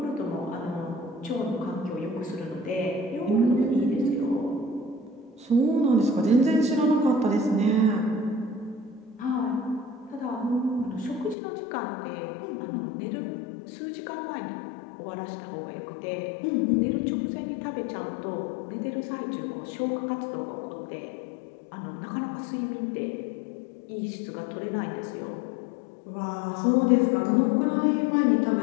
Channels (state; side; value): drops out; right; at 11.4 s